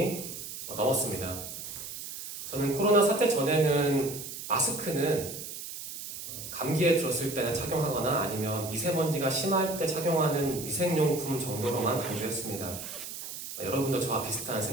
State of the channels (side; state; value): right; noise; hiss, 9 dB below the sound